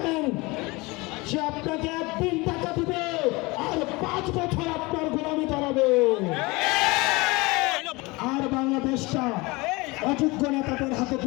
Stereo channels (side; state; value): right; quieter; 24.0 dB